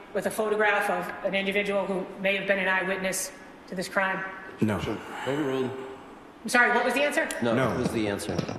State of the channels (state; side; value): identical; both; correlation 1.00